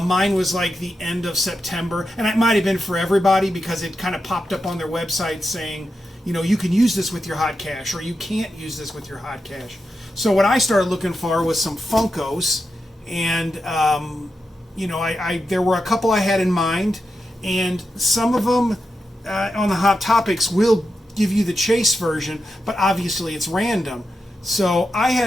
Mine was like the end of September, and it might have been for everybody because it kind of popped up on their website saying, you can use this with your hot cash, or you can't use this with your hot cash. So what I started looking for was some Funkos, and there were a couple I had in mind, and some of them on the Hot Topics will give you the chase version, but obviously it's random. So I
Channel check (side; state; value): both; normal; correlation 0.88